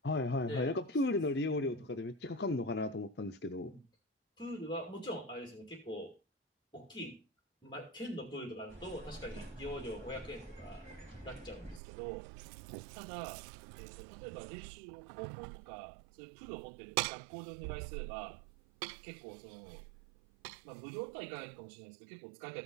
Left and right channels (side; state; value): left; drops out; at 11.8 s